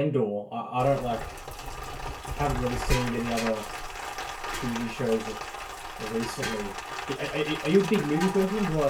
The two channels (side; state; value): both; identical; correlation 1.00